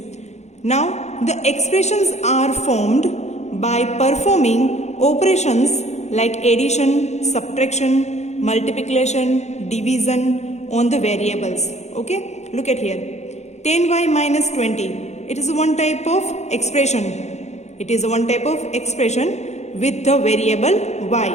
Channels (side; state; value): right; late; 0.33 ms